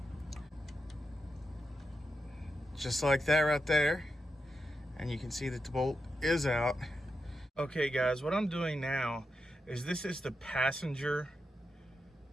Just like that right there. And you can see that the bolt is out. Okay guys, what I'm doing now is this is the passenger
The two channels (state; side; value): normal; both; correlation 0.87